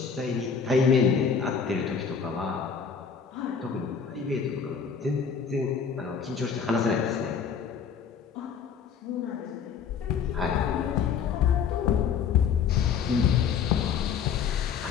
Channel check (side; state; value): right; quieter; 6.7 dB